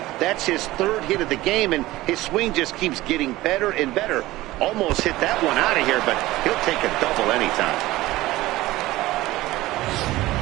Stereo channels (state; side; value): quieter; left; 17.6 dB